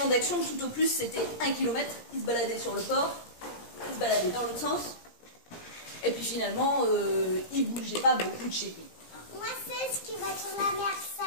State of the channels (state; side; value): late; right; 17 ms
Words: d'action, tout au plus, c'était 1 kilomètre. Il se baladait sur le port, il se baladait dans l'autre sens. Et puis finalement, il bougeait pas beaucoup de chez lui. Moi, c'est ce qui va sur la mer,